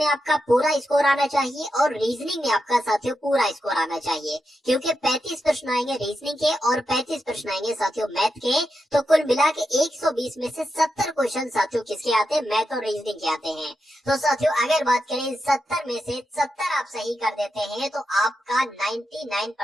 आपका पूरा स्कोर आना चाहिए और रीजनिंग में आपका साथियों पूरा स्कोर आना चाहिए। क्योंकि 35 प्रश्न आएंगे रीजनिंग के और 35 प्रश्न आएंगे साथियों मैथ के। तो कुल मिला के 120 में से 70 क्वेश्चन साथियों किसके आते हैं, मैथ और रीजनिंग के आते हैं। तो साथियों अगर बात करें 70 में से 70 आप सही कर देते हैं तो आपका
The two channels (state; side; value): normal; both; correlation 0.87